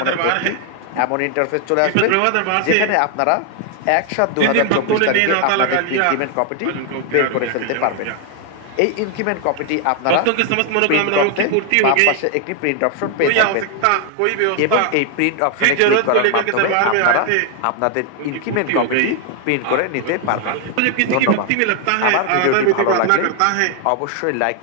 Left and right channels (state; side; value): different; both; correlation 0.00